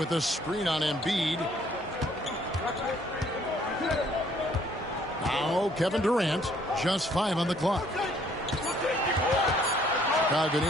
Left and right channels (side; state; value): both; normal; correlation 0.62